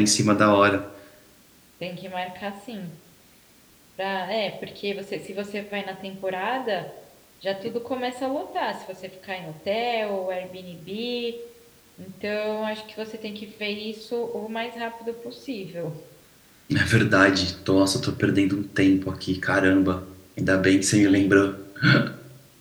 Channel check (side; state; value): both; identical; correlation 1.00